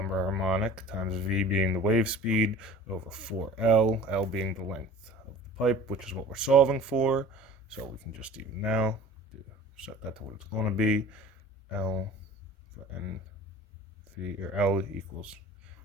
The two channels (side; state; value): both; normal; correlation 0.42